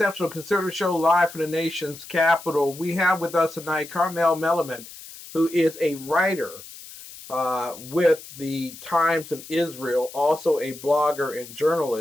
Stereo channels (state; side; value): noise; left; hiss, 16 dB below the sound